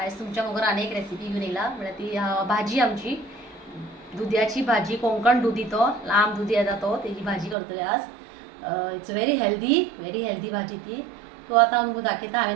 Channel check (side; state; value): left; drops out; at 7.6 s